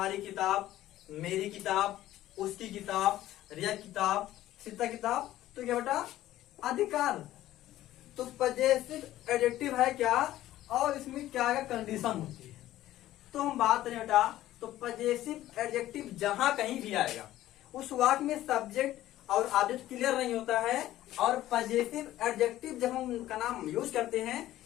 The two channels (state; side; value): quieter; right; 14.3 dB